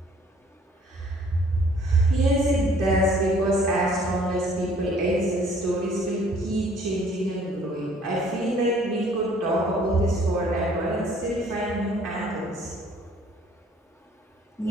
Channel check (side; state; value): both; normal; correlation 0.57